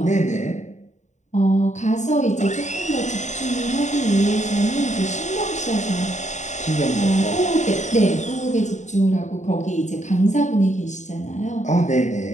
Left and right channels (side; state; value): right; late; 0.34 ms